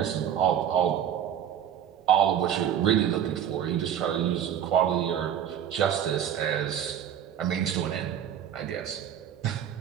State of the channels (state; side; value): quieter; left; 9.5 dB